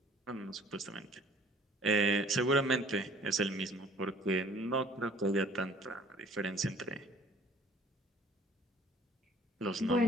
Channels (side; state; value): both; normal; correlation 0.54